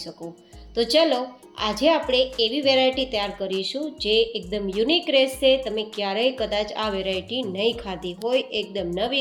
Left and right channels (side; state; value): both; identical; correlation 1.00